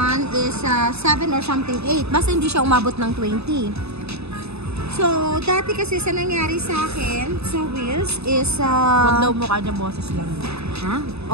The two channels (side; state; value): left; late; 0.79 ms